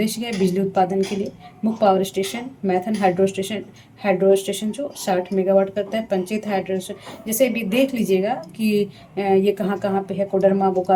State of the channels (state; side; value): identical; both; correlation 1.00